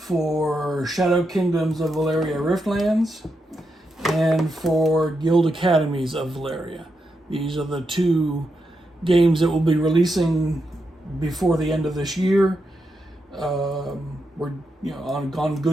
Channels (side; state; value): both; normal; correlation 0.85